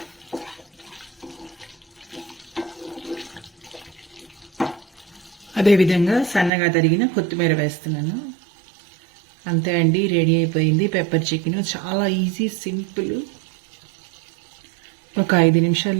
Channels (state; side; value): drops out; left; at 6.5 s